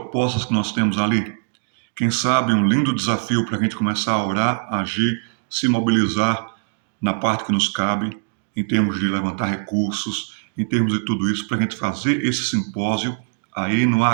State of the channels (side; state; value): left; silent; 65 dB below the other